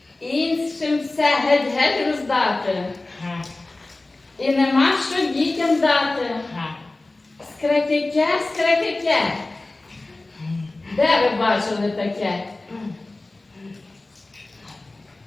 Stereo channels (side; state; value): right; quieter; 3.0 dB